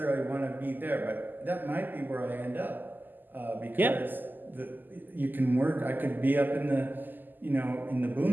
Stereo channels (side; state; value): left; late; 0.089 ms